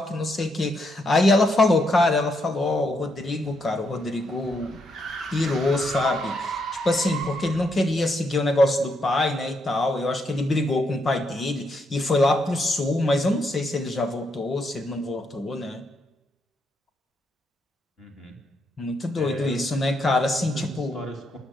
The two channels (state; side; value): normal; both; correlation 0.78